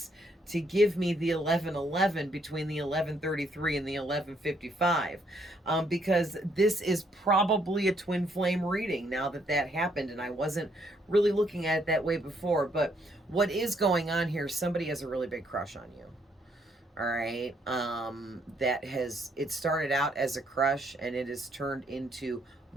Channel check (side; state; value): both; normal; correlation 0.71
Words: to give me the 1111 between the 1133 and the 1155, because this is probably a twin flame reading now that that happened, and I wasn't really looking at it that way before. But what is going on here, somebody has a really big crush on you. All right. That has, it started out as a crush and it has turned into